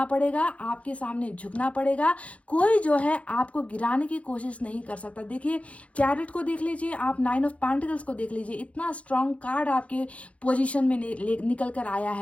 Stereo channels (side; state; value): right; late; 0.064 ms